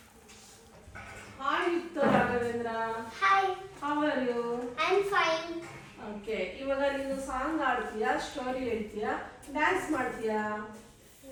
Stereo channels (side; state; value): both; identical; correlation 1.00